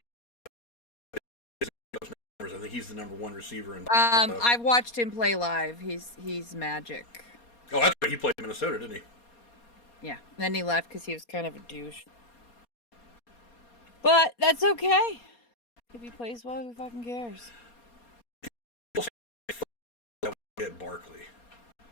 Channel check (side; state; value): right; late; 4.2 ms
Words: I think he's the number 1 receiver. I've watched him play live. He's magic. Oh, that's right. He played in Minnesota, didn't he? Yeah. Then he left because he was kind of a douche. But that's okay. If he plays well, who fucking cares? Get Barkley.